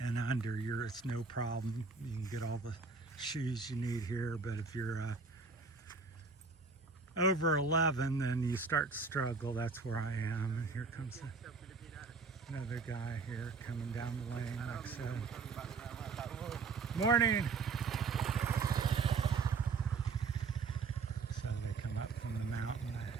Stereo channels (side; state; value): left; quieter; 4.4 dB